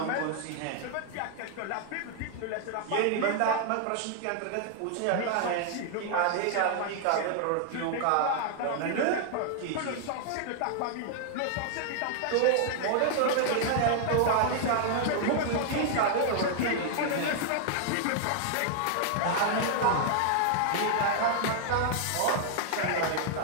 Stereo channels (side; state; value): both; different; correlation 0.00